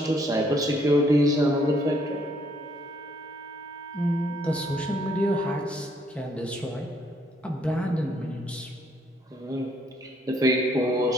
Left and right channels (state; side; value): normal; both; correlation 0.67